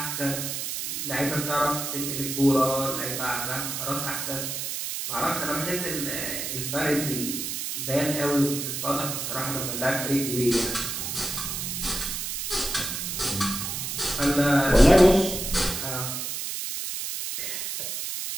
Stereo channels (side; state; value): right; noise; hiss, 4 dB below the sound